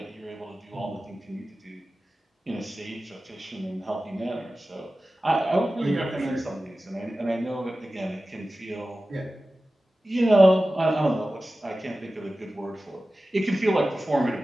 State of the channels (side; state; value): both; normal; correlation 0.95